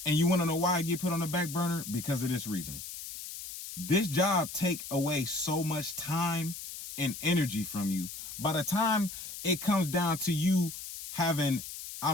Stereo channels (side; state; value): left; noise; hiss, 10 dB below the sound